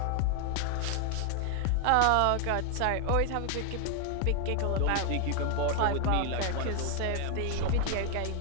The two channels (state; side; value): different; both; correlation 0.00